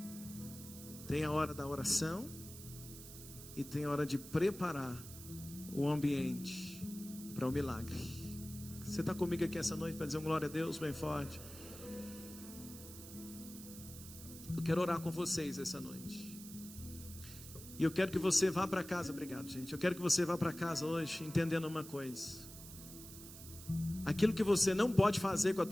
Tem a hora da oração e tem a hora de preparar o ambiente para o milagre. Você está comigo aqui essa noite para dizer um glória a Deus bem forte? Eu quero orar com vocês essa noite. E eu quero que você vá para casa. Obrigado, gente. Eu quero que você vá para casa hoje entendendo uma coisa. Aquilo que você não pode fazer com as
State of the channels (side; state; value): right; noise; hiss, 14 dB below the sound